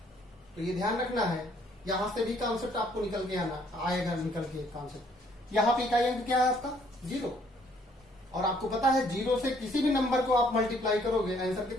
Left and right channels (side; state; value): both; normal; correlation 0.64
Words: तो ये ध्यान रखना है, यहां से भी कॉन्सेप्ट आपको निकल के आएगा निकल के कॉन्सेप्ट। यहां पे इकाई अंक क्या है आपका, 0। और आपको पता है 0 से किसी भी नंबर को आप मल्टीप्लाई करोगे, आंसर